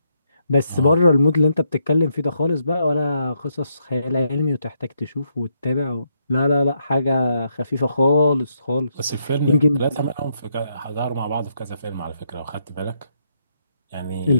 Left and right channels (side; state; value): both; inverted; correlation -0.78